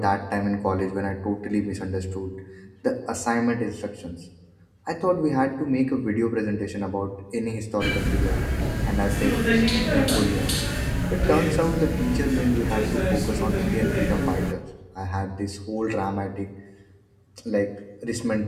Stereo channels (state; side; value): identical; both; correlation 1.00